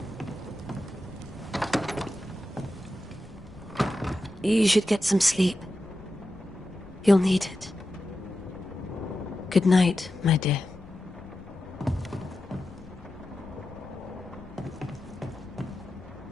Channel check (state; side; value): noise; left; rumble, 21 dB below the sound